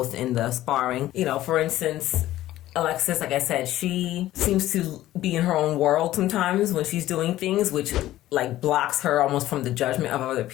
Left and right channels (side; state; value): right; quieter; 14.6 dB